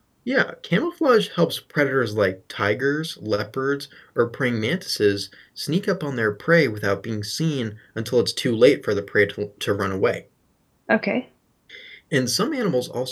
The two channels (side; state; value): both; identical; correlation 1.00